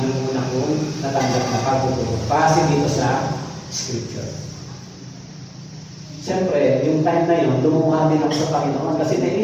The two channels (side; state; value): both; identical; correlation 1.00